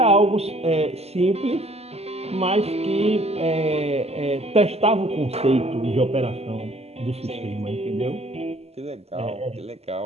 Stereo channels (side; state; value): left; late; 0.30 ms